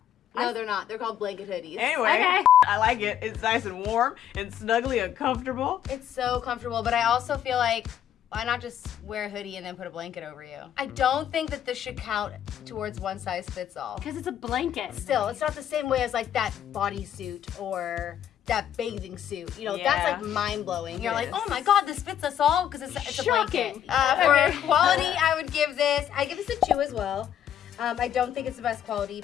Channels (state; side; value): quieter; right; 10.2 dB